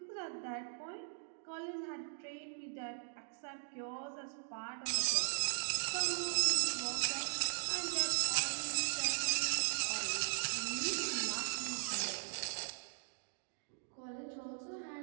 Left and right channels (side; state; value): left; silent; digital silence